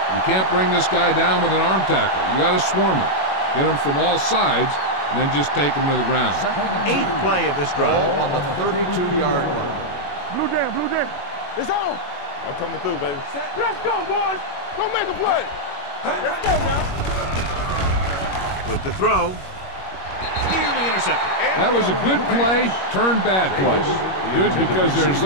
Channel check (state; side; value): late; right; 21 ms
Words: You can't bring this guy down with an arm tackle. You got to swarm him. Get him from all sides, and then just take him to the ground. 8th play of this drive. Ball on the 32-yard line. Blue jam, blue jam. It's on. I'm coming through, baby. Let's go, boys. Go make a play. Let's go now. With the throw. Nearly intercepted. That was a good play, turned bad play. Good because their